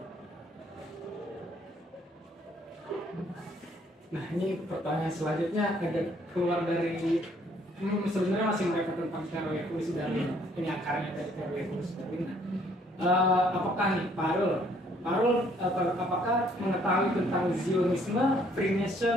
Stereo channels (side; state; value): both; normal; correlation 0.64